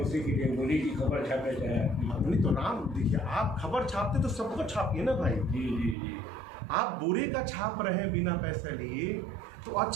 के लिए गोली की खबर छापे चाहे। नहीं तो राम देखिए, आप खबर छापते तो सबको छापिए ना भाई। जी जी जी। आप बुरे का छाप रहे हैं बिना पैसे लिए, तो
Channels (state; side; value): drops out; left; at 6.0 s